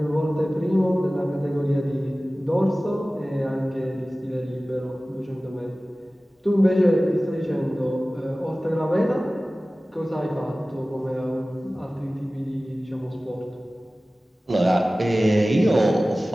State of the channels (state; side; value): normal; both; correlation 0.97